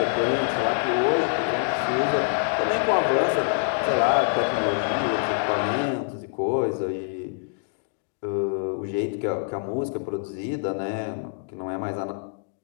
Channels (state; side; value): silent; right; digital silence